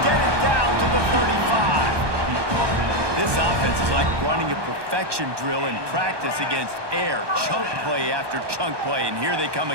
get it down to the 35. This offense is like running a perfection drill in practice against air. Chunk play after chunk play, and here they come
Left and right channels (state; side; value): late; left; 1.2 ms